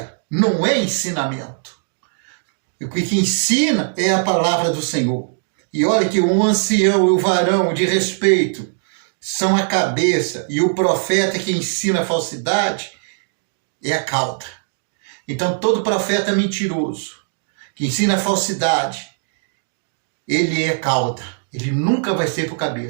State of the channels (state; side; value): silent; left; digital silence